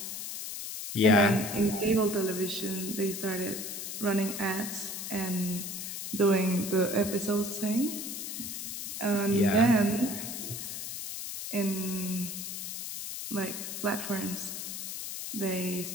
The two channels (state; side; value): noise; left; hiss, 6 dB below the sound